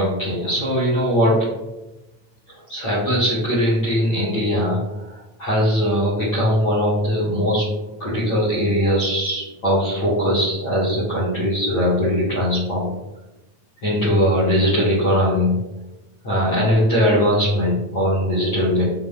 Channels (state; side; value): late; right; 9.0 ms